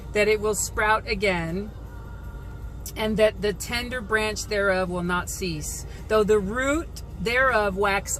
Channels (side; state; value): both; identical; correlation 1.00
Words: that it will sprout again, and that the tender branch thereof will not cease, though the root thereof wax